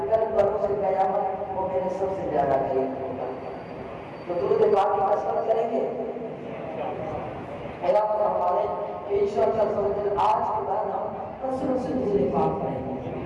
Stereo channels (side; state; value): both; identical; correlation 1.00